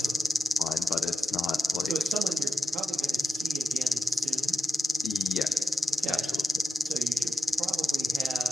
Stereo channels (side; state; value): both; normal; correlation 0.91